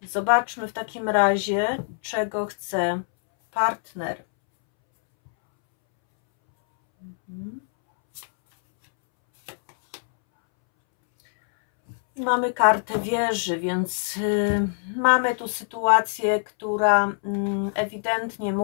Zobaczmy w takim razie, czego chce partner. Mamy kartę wieży, więc mamy tu sytuację, która ewidentnie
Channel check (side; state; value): right; silent; 63 dB below the other